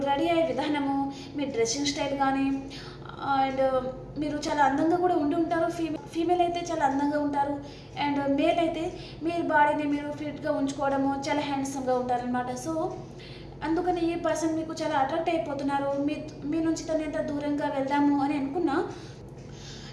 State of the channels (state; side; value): identical; both; correlation 1.00